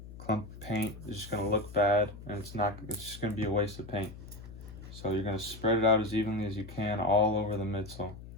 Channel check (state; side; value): noise; left; hum, 14 dB below the sound